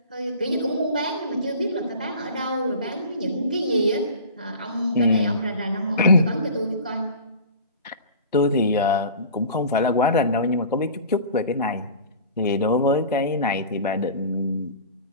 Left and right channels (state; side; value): inverted; both; correlation -0.40